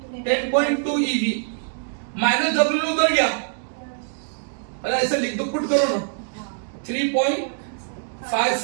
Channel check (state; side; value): silent; left; digital silence